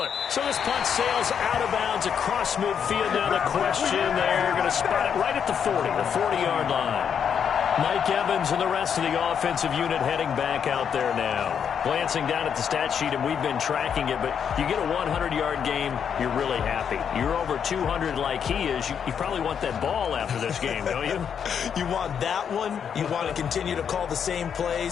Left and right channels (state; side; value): quieter; right; 7.7 dB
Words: So this punt sails out of bounds across midfield. Now the question, they're going to spot it right at the 40, the 40-yard line. Mike Evans and the rest of the offensive unit heading back out there now. Glancing down at the stat sheet, and we've been tracking it, but you get a 100-yard game, you're really happy. You're over 200 like he is. You probably want that ball after this game, don't you? You want that one. You want to continue to call the same